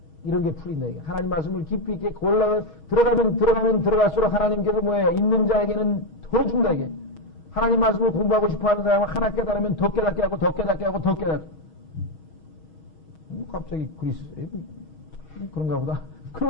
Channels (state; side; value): late; right; 6.3 ms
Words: 이런 게 풀린다. 이게. 하나님 말씀을 깊이 있게 들어가면 들어갈수록 하나님께서 뭐예요? 있는 자에게는 더 준다, 이게. 하나님 말씀을 공부하고 싶어 하는 사람은 하나 깨달으면 더 깨닫게 하고, 더 깨닫게 하고, 더 깨닫게. 갑자기 그리스, 그런가 보다.